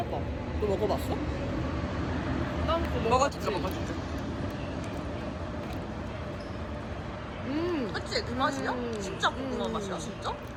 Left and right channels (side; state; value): both; identical; correlation 1.00